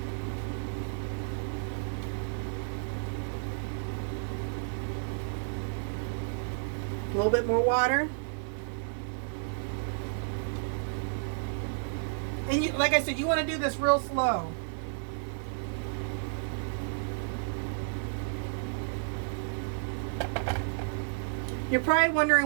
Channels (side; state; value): left; silent; digital silence